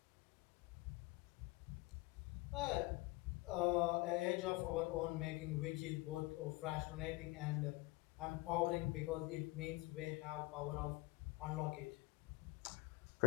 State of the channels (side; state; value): right; quieter; 21.5 dB